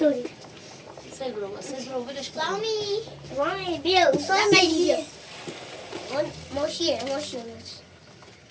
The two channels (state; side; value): identical; both; correlation 1.00